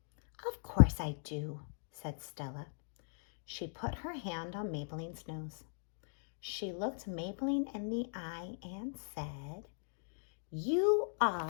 "Of course I do," said Stella. She put her hand on Maybelline's nose. She looked Maybelline in the eye and said, "You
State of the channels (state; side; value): silent; right; digital silence